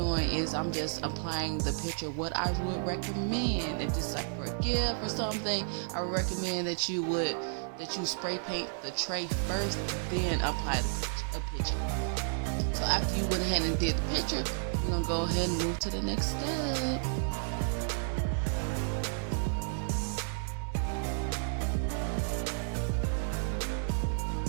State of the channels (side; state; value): left; silent; 56 dB below the other